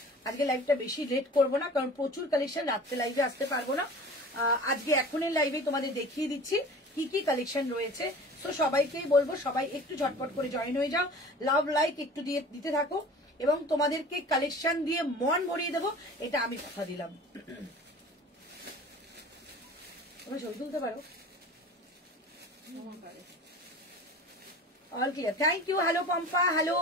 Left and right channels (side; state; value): both; normal; correlation 0.41